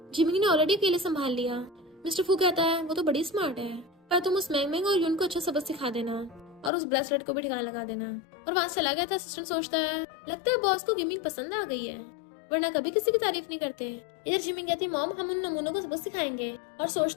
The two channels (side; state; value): right; drops out; at 6.7 s